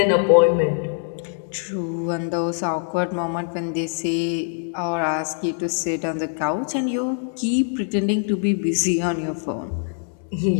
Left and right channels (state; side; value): silent; right; 63 dB below the other